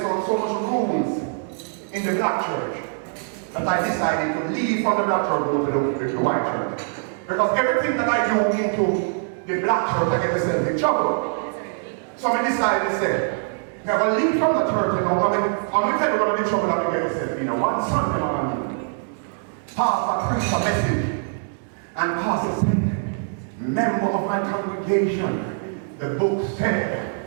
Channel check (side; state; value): left; silent; 63 dB below the other